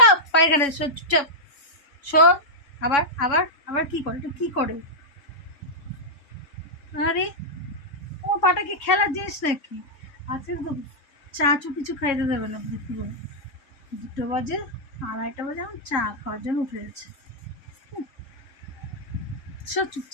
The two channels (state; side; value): late; right; 3.6 ms